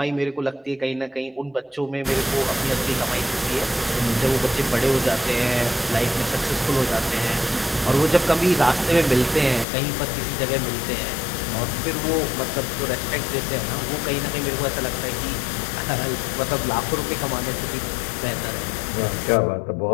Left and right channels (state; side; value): drops out; right; at 9.7 s